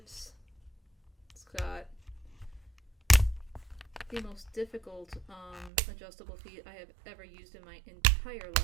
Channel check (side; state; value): left; drops out; at 5.7 s